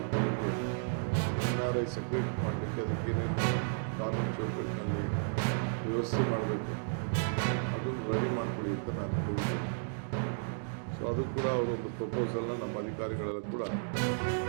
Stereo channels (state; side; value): silent; left; digital silence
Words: NRI ಸಪ್ರೇಟ್ ಮಾಡಲಿಕ್ಕೆ ಅದಕ್ಕೇನೇನು ಕಾನೂನು ಚೌಕಟ್ಟಿನಲ್ಲಿ ವ್ಯವಸ್ಥೆ ಮಾಡಬೇಕು ಅದನ್ನು ರೆಡಿ ಮಾಡ್ಕೊಳ್ಳಿ ಅಂತ ನಾನು ಹೇಳಿದ್ದೆ. ಸೊ ಅದು ಕೂಡ ಅವರೊಂದು ಪ್ರಪೋಸಲ್ನ ನಮ್ಮ ಅಧಿಕಾರಿಗಳೆಲ್ಲ ಕೂಡ